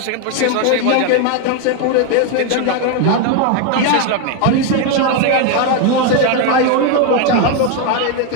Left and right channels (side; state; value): both; different; correlation 0.01